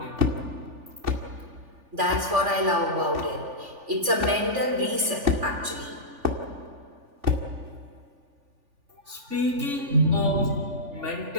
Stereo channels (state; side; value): late; left; 3.4 ms